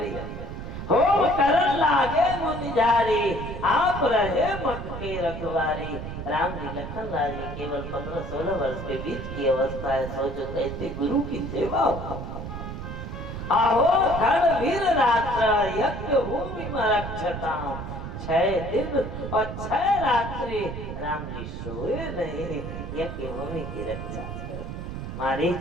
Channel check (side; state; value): right; noise; rumble, 7 dB below the sound